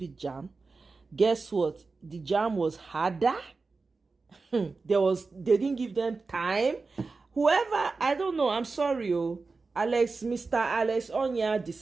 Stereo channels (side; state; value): left; quieter; 4.1 dB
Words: JAM? Guess what? The JAM was harder. They didn't give them time. Whoever, I don't know, I'm sorry, Mr. Alex Onya,